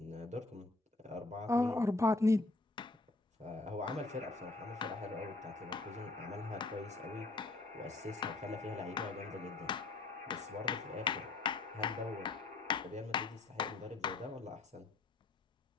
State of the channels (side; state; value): right; quieter; 3.3 dB